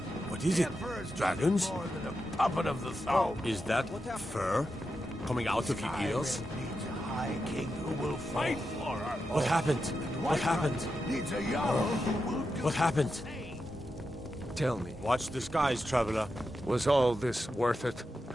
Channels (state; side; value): normal; both; correlation 0.88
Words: What is it? Dragons? More than a puppet of the thumb. Is that fur coming out of your ears? Needs a high king who will fight for her. What happened? What happened? Needs a jarl who will do What happened? Tell me, Watch the skies, traveler. was all this worth it?